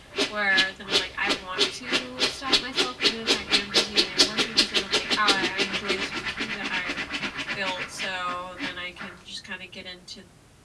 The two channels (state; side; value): identical; both; correlation 1.00